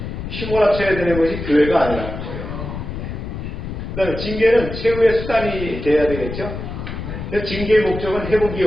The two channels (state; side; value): noise; left; rumble, 7 dB below the sound